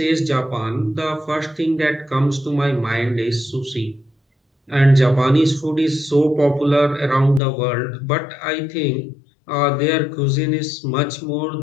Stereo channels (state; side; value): drops out; right; at 7.4 s